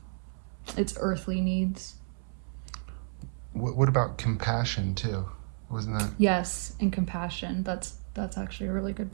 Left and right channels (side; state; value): left; silent; 57 dB below the other